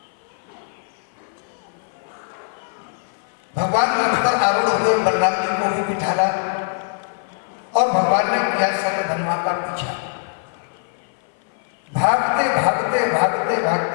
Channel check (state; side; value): silent; right; 55 dB below the other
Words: भगवान रथ पर आरूढ़ हुए, बलराम जी को भी बिठाला और भगवान ने किया सत्यधन्वा का पीछा। भागते भागते भागते भागते